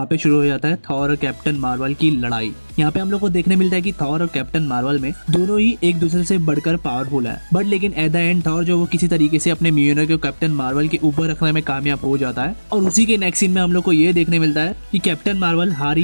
पे शुरू हो जाता है थॉर और कैप्टन मार्वल की लड़ाई। यहाँ पे हम लोग को देखने मिलता है कि थॉर और कैप्टन मार्वल में दोनों ही एक दूसरे से बढ़कर पावरफुल है, बट लेकिन एट द एंड थॉर जो वो किसी तरीके से अपने मियोनर को कैप्टन मार्वल के ऊपर रखने में कामयाब हो जाता है। और उसी के नेक्स्ट सीन में हम लोग को ये देखने मिलता है कि कैप्टन मार्वल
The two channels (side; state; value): both; inverted; correlation -1.00